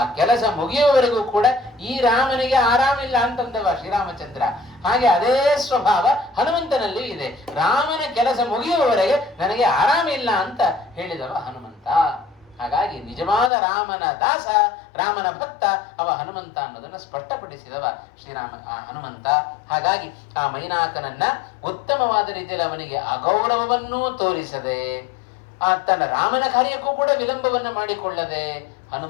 ಕೆಲಸ ಮುಗಿಯುವವರೆಗೂ ಕೂಡ ಈ ರಾಮನಿಗೆ ಆರಾಮಿಲ್ಲ ಅಂತಂದವ ಶ್ರೀರಾಮಚಂದ್ರ. ಹಾಗೆ ಅದೇ ಸ್ವಭಾವ ಹನುಮಂತನಲ್ಲಿ ಇದೆ. ರಾಮನ ಕೆಲಸ ಮುಗಿಯುವವರೆಗೆ ನನಗೆ ಆರಾಮಿಲ್ಲ ಅಂತ ಹೇಳಿದವ ಹನುಮಂತ. ಹಾಗಾಗಿ ನಿಜವಾದ ರಾಮನ ದಾಸ, ರಾಮನ ಭಕ್ತ ಅವ ಹನುಮಂತ ಅನ್ನೋದನ್ನು ಸ್ಪಷ್ಟಪಡಿಸಿದವ ಹನುಮಂತ. ಹಾಗಾಗಿ ಆ ಮೈನಾಕನನ್ನ ಉತ್ತಮವಾದ ರೀತಿಯಲ್ಲಿ ಅವನಿಗೆ ಅಗೌರವವನ್ನೂ ತೋರಿಸದೆ, ತನ್ನ ರಾಮನ ಕಾರ್ಯಕ್ಕೂ ಕೂಡ ವಿಳಂಬವನ್ನು ಮಾಡಿಕೊಳ್ಳದೆ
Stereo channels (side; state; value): right; drops out; at 13.5 s